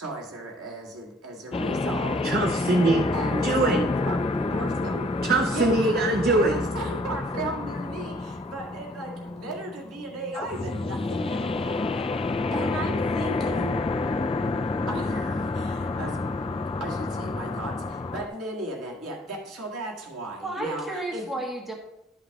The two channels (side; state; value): both; normal; correlation 0.60